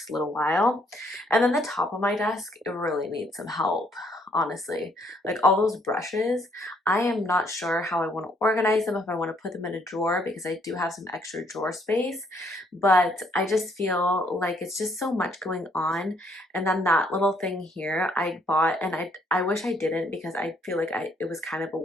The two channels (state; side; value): normal; both; correlation 0.68